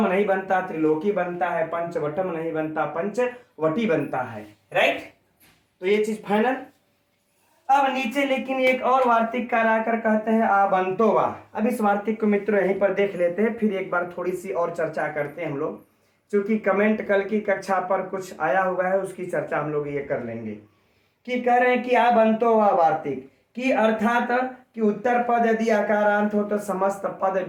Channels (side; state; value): both; identical; correlation 1.00